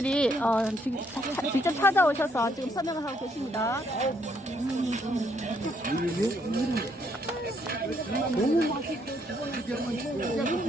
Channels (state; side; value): normal; both; correlation 0.71